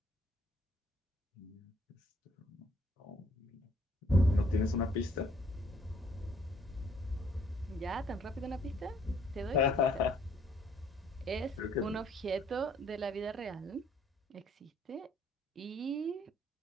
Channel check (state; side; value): normal; both; correlation 0.63